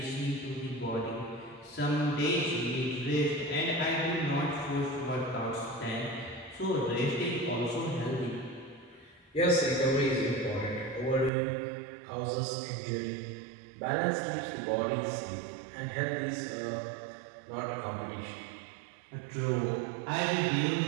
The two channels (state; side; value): drops out; left; at 11.3 s